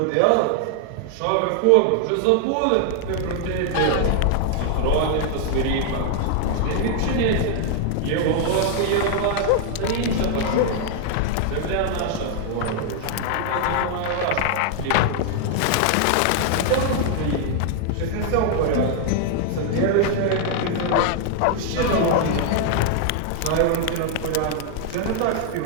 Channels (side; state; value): both; different; correlation 0.00